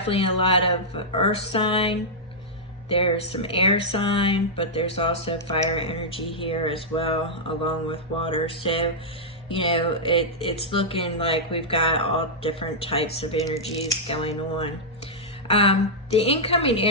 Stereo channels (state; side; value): normal; both; correlation -0.08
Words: a lot of earth sign. There's some air sign, but there's also fire energy here as well, along with water. So, it's looking like we've got all different types of energies going on. The incoming